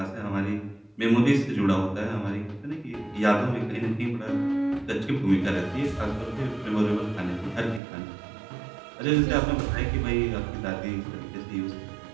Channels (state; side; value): drops out; left; at 7.8 s